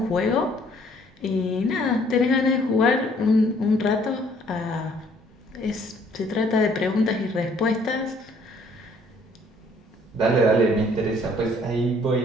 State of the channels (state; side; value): normal; both; correlation 0.61